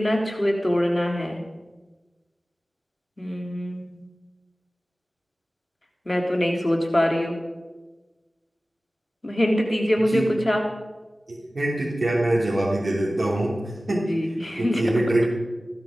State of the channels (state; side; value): normal; both; correlation 0.96